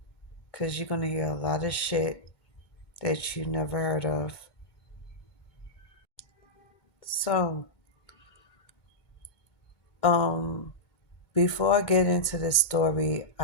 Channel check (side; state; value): right; late; 2.2 ms